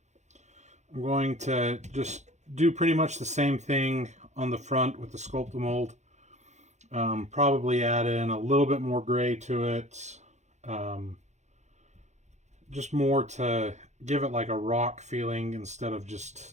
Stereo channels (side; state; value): left; late; 0.33 ms